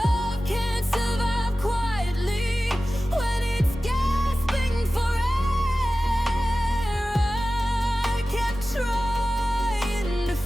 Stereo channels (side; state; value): both; normal; correlation 0.95